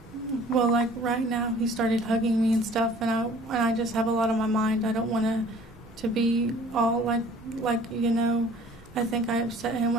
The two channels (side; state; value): both; normal; correlation 0.51